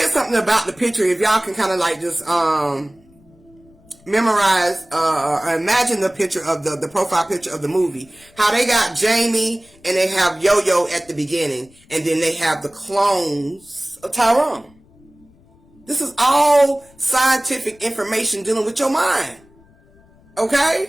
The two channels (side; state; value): left; noise; rumble, 29 dB below the sound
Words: something about the picture. If y'all can kind of like just memorize or imagine the picture of the profile picture of the movie. How they got Jamie and they have Yo-Yo at the beginning, and then they have the clones of Tyrone. This is all scientific information dealing with your mind.